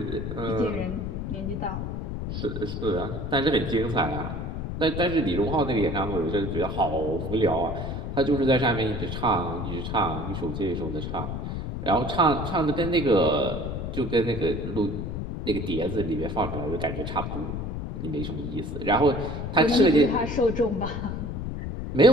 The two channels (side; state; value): left; noise; rumble, 5 dB below the sound